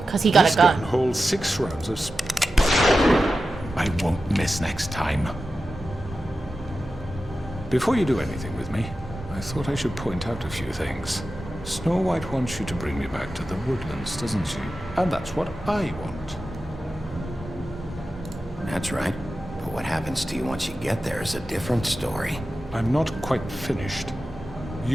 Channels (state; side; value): normal; both; correlation 0.92